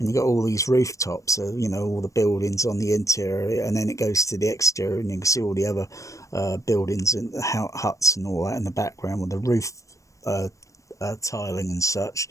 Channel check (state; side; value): late; right; 0.16 ms